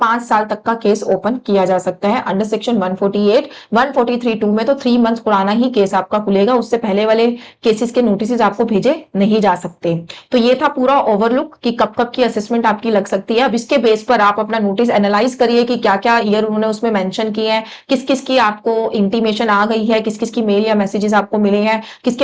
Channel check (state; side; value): identical; both; correlation 1.00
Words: साल तक का केस ओपन किया जा सकता है अंडर सेक्शन 148। 143(2) में तो 3 मंथ पुराना ही केस आपका खुलेगा, उससे पहले वाले केसेस के नोटिस आपको भेजे नहीं जा सकते। तो ये था पूरा ओवरलुक कि कब कब की असेसमेंट आपकी लग सकती है। अब इसके बेस पर आप अपना नोटिस एनालाइज करिए कि क्या क्या ईयर उन्होंने उसमें मेंशन किए हैं, किस किस की आपको इंटीमेशन आ गई है, किस किस की मेल या मैसेजेस आपको मिले हैं,